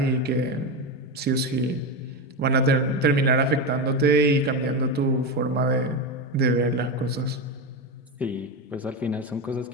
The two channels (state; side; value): normal; both; correlation 0.15